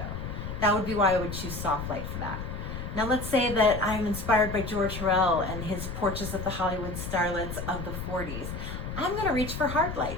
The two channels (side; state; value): left; noise; rumble, 6 dB below the sound